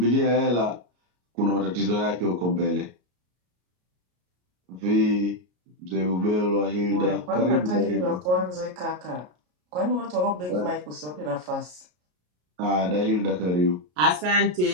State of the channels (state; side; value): late; left; 33 ms